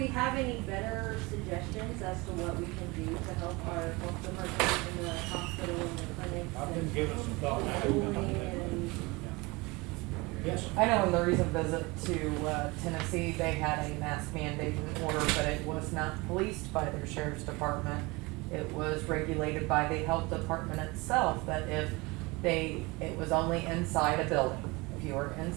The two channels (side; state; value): left; quieter; 24.6 dB